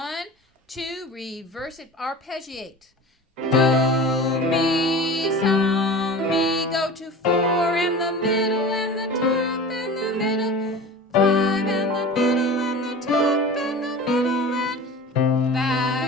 2, reverse it, arpeggiate. Do, mi, so, mi, go to 4 and the middle and the top and the middle. 5 and the middle and the top and the middle and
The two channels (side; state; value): both; normal; correlation 0.35